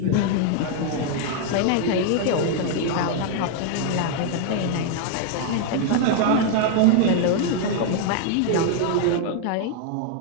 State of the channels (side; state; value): both; different; correlation 0.00